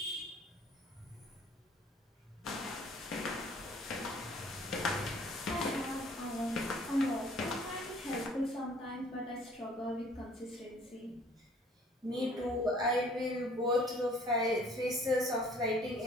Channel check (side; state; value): both; normal; correlation 0.55